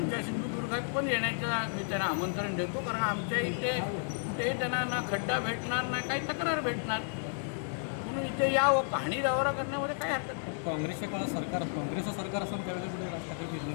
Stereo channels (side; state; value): right; silent; digital silence